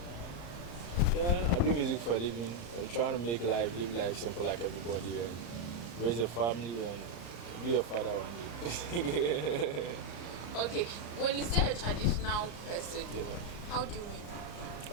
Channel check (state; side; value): late; right; 34 ms